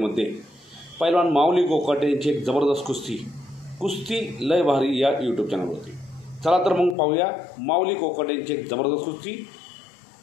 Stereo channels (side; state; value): right; drops out; at 7.0 s